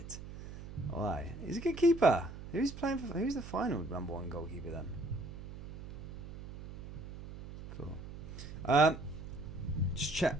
Why? He's a good keeper. Who's playing for? Who's the final number 1 goalkeeper then? Cool. Just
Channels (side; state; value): right; noise; hum, 11 dB below the sound